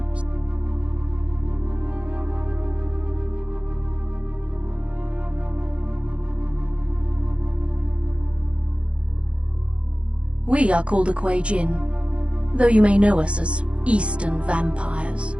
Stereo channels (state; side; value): late; left; 0.060 ms